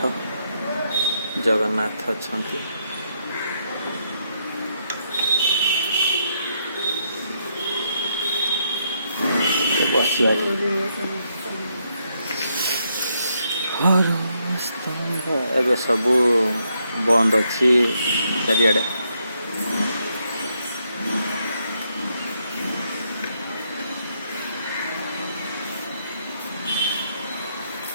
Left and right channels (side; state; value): both; inverted; correlation -0.77